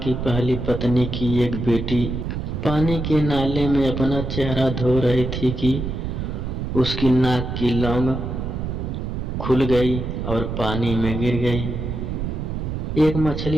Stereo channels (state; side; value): noise; right; rumble, 4 dB below the sound